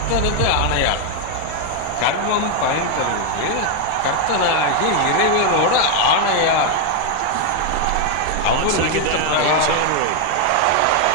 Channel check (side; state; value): both; different; correlation 0.01